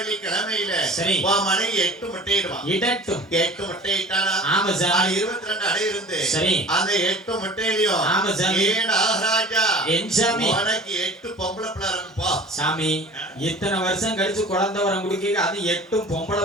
கிழமையில சரி மனைவி 8 முட்டையிடுவான். இடட்டும் 8 முட்டையிட்டானா. ஆமராஜன் 22 அடை இருந்து சரி அந்த 8 முட்டையிலயும் ஆமராஜன் ஏ நாகராஜா என் சாமி உனக்கு 8 பொம்பளை பிள்ளை இருக்குப்பா. சாமி இத்தனை வருஷம் கழிச்சு குழந்தை வரம் குடிக்க அது 8 பொம்பளை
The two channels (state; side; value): normal; both; correlation 0.42